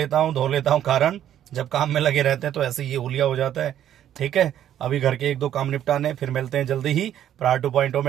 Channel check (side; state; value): left; quieter; 10.9 dB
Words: हूँ, धो लेता हूँ, कारण जब काम में लगे रहते हैं तो ऐसे ये हुलिया हो जाता है। ठीक है, अभी घर के 1-2 काम निपटाने, फिर मिलते हैं जल्दी ही। प्रहार 2.0 में